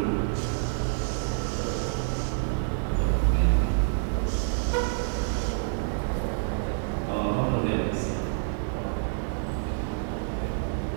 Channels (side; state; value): left; silent; 60 dB below the other